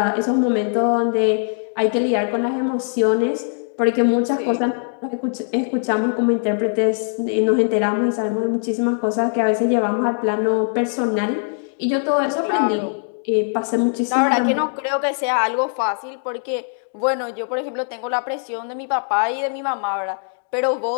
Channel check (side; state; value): right; silent; 65 dB below the other